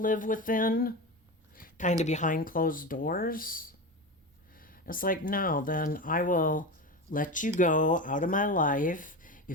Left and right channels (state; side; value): normal; both; correlation 0.22